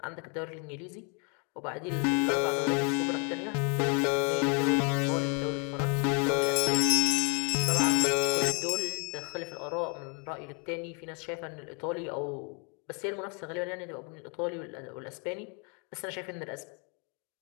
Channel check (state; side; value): quieter; right; 36.0 dB